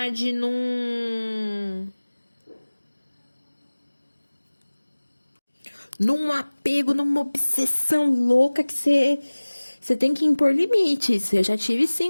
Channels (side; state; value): both; inverted; correlation -1.00